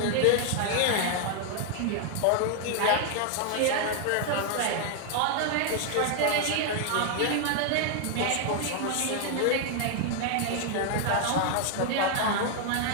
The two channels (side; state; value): both; different; correlation 0.00